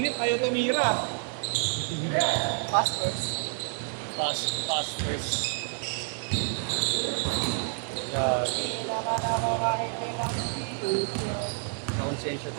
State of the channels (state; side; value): silent; left; 57 dB below the other